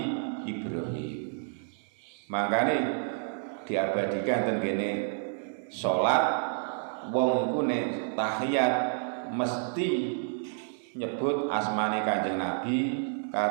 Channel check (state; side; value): silent; left; digital silence